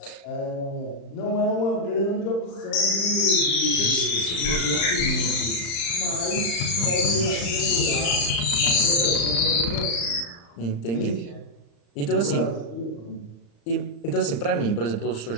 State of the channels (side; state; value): right; late; 35 ms